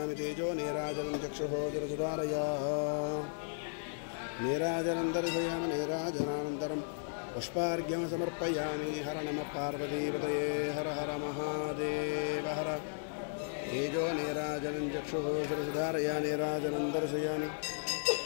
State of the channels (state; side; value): silent; right; 54 dB below the other